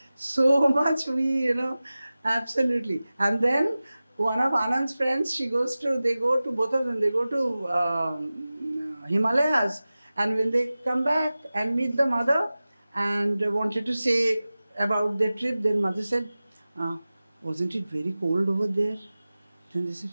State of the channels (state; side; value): inverted; both; correlation -0.97